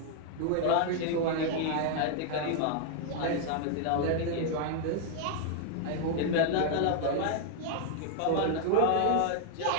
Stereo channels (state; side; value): different; both; correlation 0.00